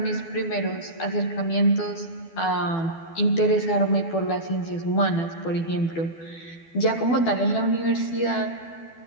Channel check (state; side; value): late; right; 12 ms